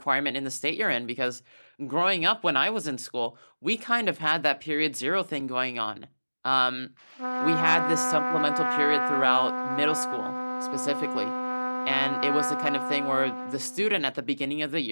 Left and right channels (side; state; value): both; inverted; correlation -1.00